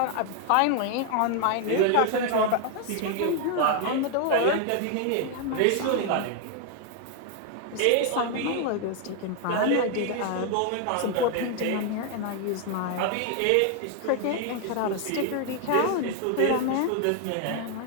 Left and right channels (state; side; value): different; both; correlation 0.00